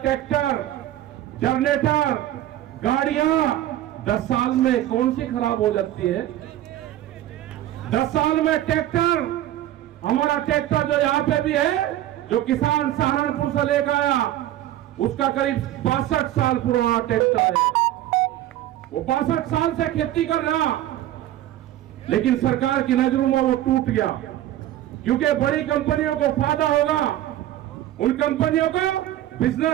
ट्रैक्टर, जनरेटर, गाड़ियां 10 साल में कौन सी खराब हो जाती है? 10 साल में ट्रैक्टर, हमारा ट्रैक्टर जो यहाँ पे भी है, जो किसान सहारनपुर से लेकर आया, उसका करीब 62 साल पुराना ट्रैक्टर है। वो 62 साल से खेती कर रहा, लेकिन सरकार की नजरों में वो टूट गया, क्योंकि बड़ी कंपनियों को फायदा होगा, उन कंपनियों को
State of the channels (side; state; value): left; quieter; 13.3 dB